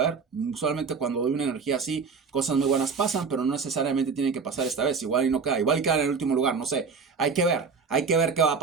Usualmente cuando doy una energía así, cosas muy buenas pasan, pero no necesariamente tienen que pasar esta vez. Igual y no queda, igual y queda en el último lugar, no sé. Hay que ver qué va a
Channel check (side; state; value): left; quieter; 5.2 dB